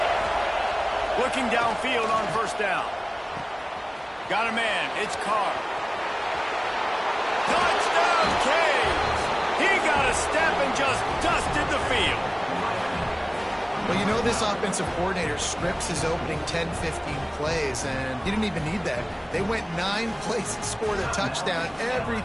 Looking downfield on first down. Got a man. It's Carr. Touchdown, Canes! He got a step and just dusted the field. Well, you know this offensive coordinator scripts his opening 10, 15 plays, and he didn't even need that. They went 9 plays and scored a touchdown.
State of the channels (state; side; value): identical; both; correlation 1.00